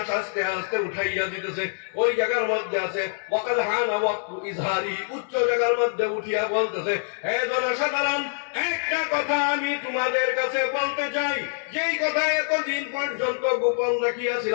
আস্তে আস্তে উঠাইয়া দিতেছে। ওই জায়গার মধ্যে আছে ওয়াকাদ হানা ওয়াক্তু ইজহারি, উচ্চ জায়গার মধ্যে উঠিয়া বলতেছে, হে জনসাধারণ, একটা কথা আমি তোমাদের কাছে বলতে চাই, যেই কথা এতদিন পর্যন্ত গোপন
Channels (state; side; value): silent; right; digital silence